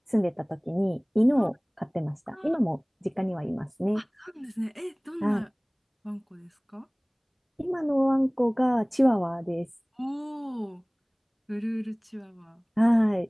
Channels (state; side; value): identical; both; correlation 1.00